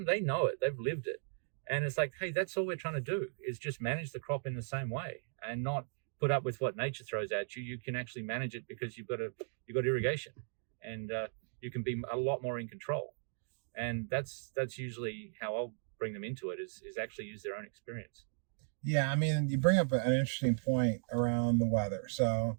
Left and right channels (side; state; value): left; silent; digital silence